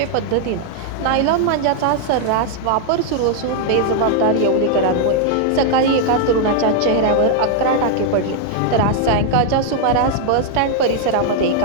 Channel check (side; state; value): both; different; correlation 0.00